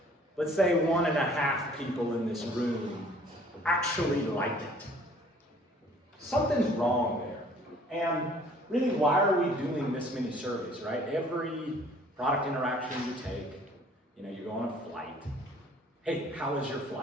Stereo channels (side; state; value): both; normal; correlation 0.55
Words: let's say 1.5 people in this room actually like it. Something's wrong there. And really, why are we doing this many surveys, right? Every product interaction you take, you go on a flight. Hey, how was your